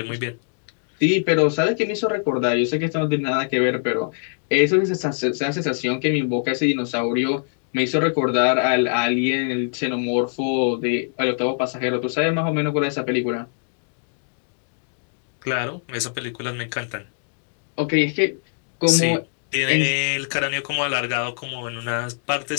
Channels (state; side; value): silent; right; digital silence